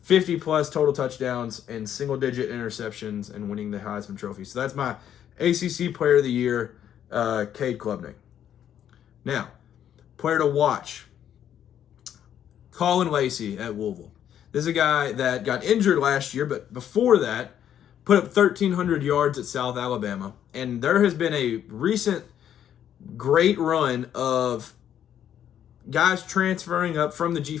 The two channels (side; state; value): right; quieter; 10.0 dB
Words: 50-plus total touchdowns, and single-digit interceptions, and winning the Heisman Trophy. So that's my ACC Player of the Year, Cade Klubnik. Now, player to watch, Colin Lacey at Louisville. This is a guy that got injured last year, but before that, put up 1,300 yards at South Alabama. And there has been a recent great run of guys transferring up from the